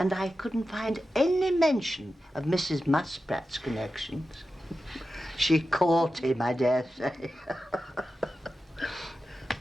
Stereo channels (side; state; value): both; normal; correlation 0.92